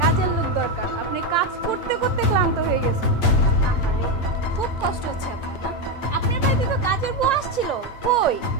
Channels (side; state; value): right; late; 8.5 ms